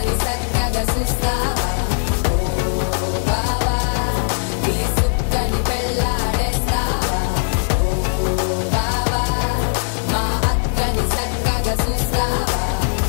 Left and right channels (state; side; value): silent; right; digital silence